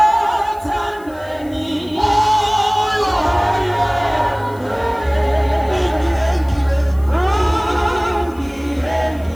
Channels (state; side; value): noise; left; hiss, 26 dB below the sound